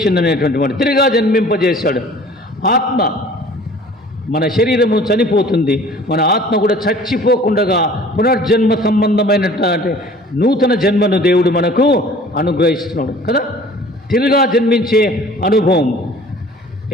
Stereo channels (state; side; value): normal; both; correlation 0.49